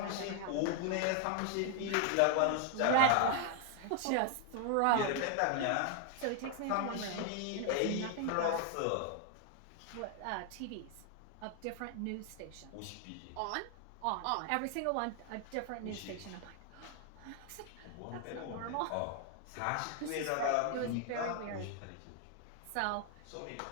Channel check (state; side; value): different; both; correlation 0.00